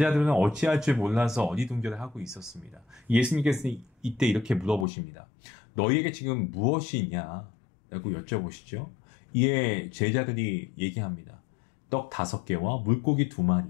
어찌할 줄 몰라서 어리둥절을 하고 있었습니다. 예수님께서는 이때 이렇게 물어보십니다. 너희에게 지금 무엇이 있냐? 라고 여쭤보시죠. 이에 제자들이 얘기합니다. 떡 5개와 물고기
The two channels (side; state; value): right; drops out; at 4.9 s